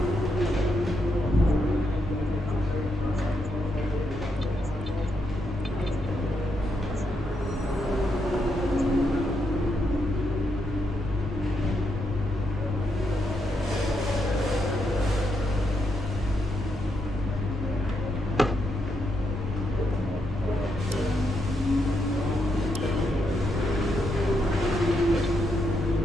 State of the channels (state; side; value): normal; both; correlation 0.80